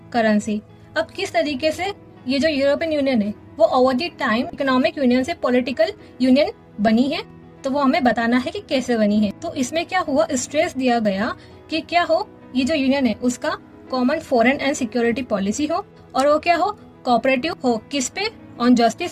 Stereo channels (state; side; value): identical; both; correlation 1.00